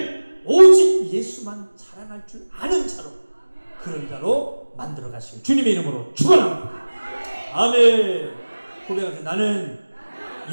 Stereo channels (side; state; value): both; inverted; correlation -1.00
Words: 오직 예수만 자랑할 줄 아는 자로, 그런 자로 만들어 가시길 주님의 이름으로 축원합니다. 아멘. 고백하세요. 나는